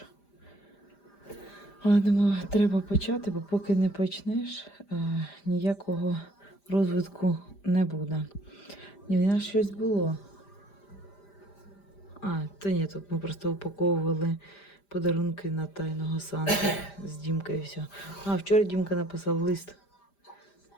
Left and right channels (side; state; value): right; late; 5.0 ms